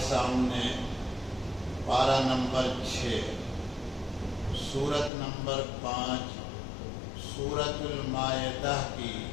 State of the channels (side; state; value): right; drops out; at 5.1 s